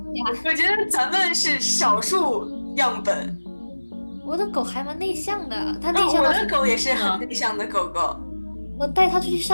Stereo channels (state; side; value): inverted; both; correlation -1.00